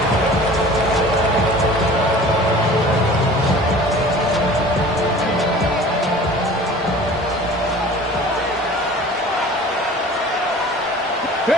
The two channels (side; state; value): both; normal; correlation 0.43